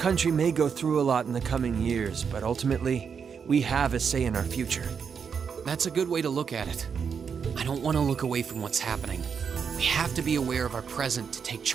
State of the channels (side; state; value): left; quieter; 6.6 dB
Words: may go through a lot in the coming years, but ultimately, we have a say in our future. That's a good way to look at it. I don't want to look away from what's happening. We have to be aware of our present to take